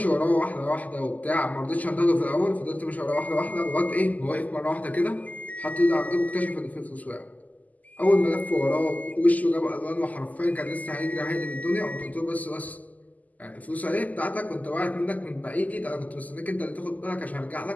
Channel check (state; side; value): late; right; 0.078 ms